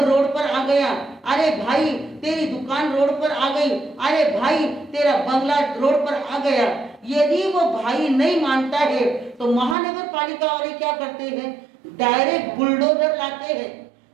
रोड पर आ गया, अरे भाई तेरी दुकान रोड पर आ गई, अरे भाई तेरा बंगला रोड पर आ गया। यदि वो भाई नहीं मानता है तो महानगर पालिका वाले क्या करते हैं? डायरेक्ट बुलडोजर लाते हैं।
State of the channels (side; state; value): left; drops out; at 9.8 s